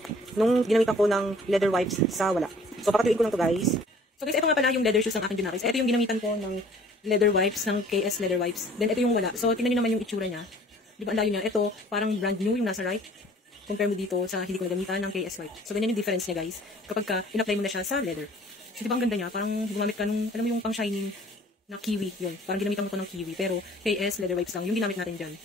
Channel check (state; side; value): normal; both; correlation 0.53